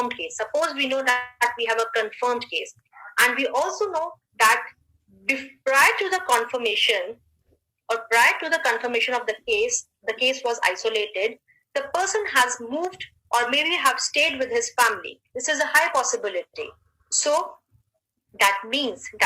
case. Suppose we know that we have a confirmed case, and we also know that prior to the confirmation or prior to the confirmation of the case was isolated, the person has moved or maybe have stayed with his family. This is a high possibility. So that means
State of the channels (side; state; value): both; identical; correlation 1.00